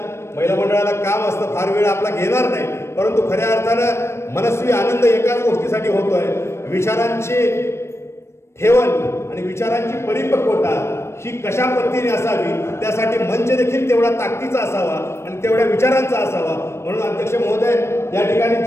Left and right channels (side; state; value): right; late; 0.13 ms